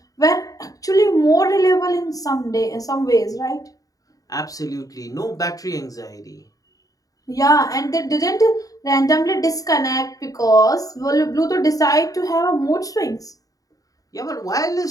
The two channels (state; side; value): late; right; 0.17 ms